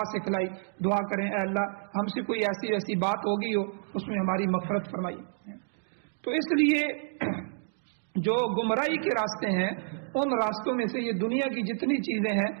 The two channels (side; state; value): left; silent; digital silence